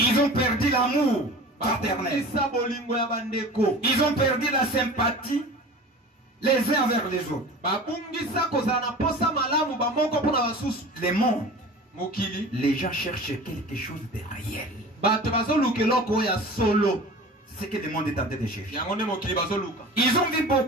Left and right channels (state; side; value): normal; both; correlation 0.38